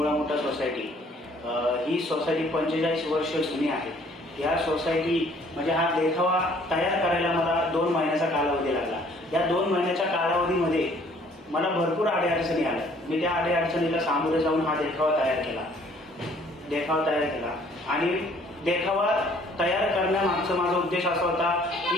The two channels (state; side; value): normal; both; correlation 0.59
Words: मोठा सोसायटी। ही सोसायटी 45 वर्ष जुनी आहे। या सोसायटी म्हणजे हा देखावा तयार करायला मला 2 महिन्याचा कालावधी लागला। या 2 महिन्याच्या कालावधीमध्ये मला भरपूर अडचणी आल्या। मी त्या अडचणीला सामोरे जाऊन हा देखावा तयार केला आणि देखावा तयार करण्यामागचा माझा उद्देश असा होता